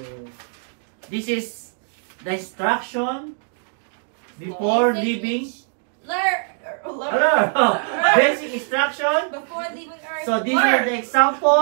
this is the instruction before leaving. Basic instruction. Before leaving Earth. So these are the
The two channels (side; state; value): left; silent; 63 dB below the other